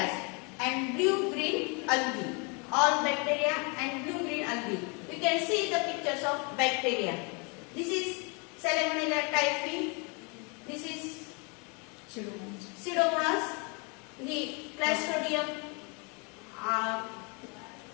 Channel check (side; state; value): right; quieter; 32.9 dB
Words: and blue-green algae. All bacteria and blue-green algae. We can see the pictures of bacteria. This is Salmonella typhi. This is Pseudomonas. The Clostridium.